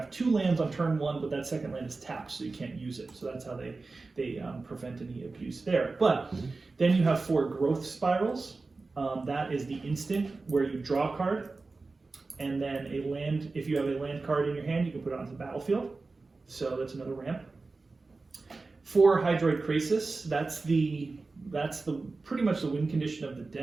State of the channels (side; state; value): left; quieter; 3.7 dB